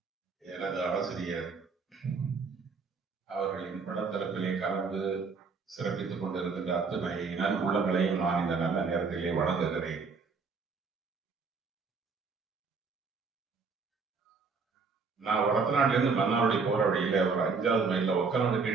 எனது ஆசிரியர் அவர்களின் படத்தரப்பிலே கலந்து சிறப்பித்துக் கொண்டிருக்கின்ற அத்தனை நன்புள்ளங்களையும் நான் இந்த நல்ல நேரத்திலே வழங்குகிறேன். நான் வடத்தநாட்டில இருந்து மன்னாருடைய போற வழியில ஒரு 5வது மைல்ல ஒக்கநாடு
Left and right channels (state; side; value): quieter; left; 4.8 dB